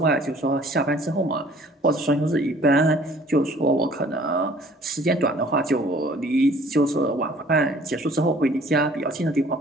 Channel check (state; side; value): normal; both; correlation 0.54